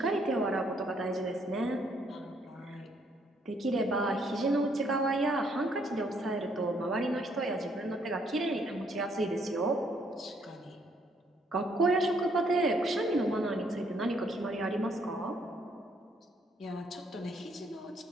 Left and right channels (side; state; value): both; normal; correlation 0.69